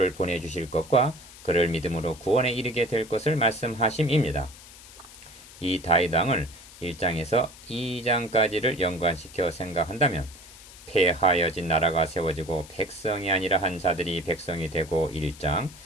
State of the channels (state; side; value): noise; left; hiss, 19 dB below the sound